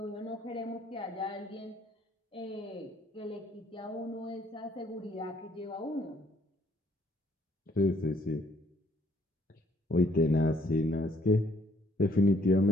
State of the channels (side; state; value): both; normal; correlation 0.65